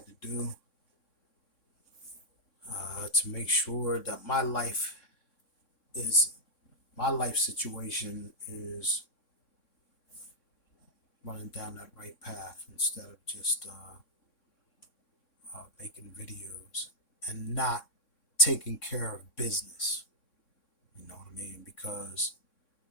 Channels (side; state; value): right; late; 3.6 ms